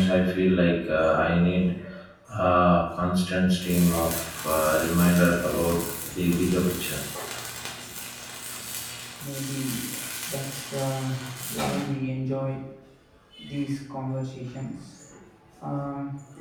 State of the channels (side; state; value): both; identical; correlation 1.00